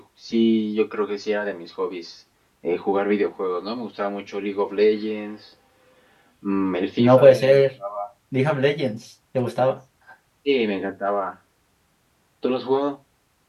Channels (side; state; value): both; identical; correlation 1.00